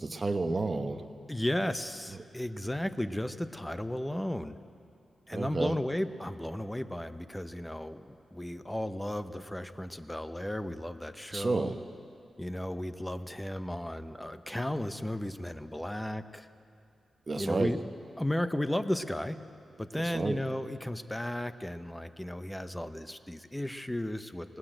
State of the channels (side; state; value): both; normal; correlation 0.97